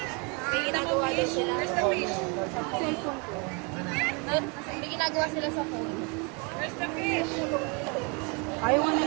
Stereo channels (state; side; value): quieter; left; 32.0 dB